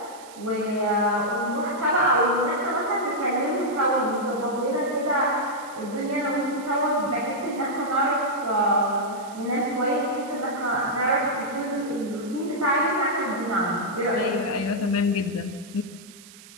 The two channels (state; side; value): noise; right; hiss, 20 dB below the sound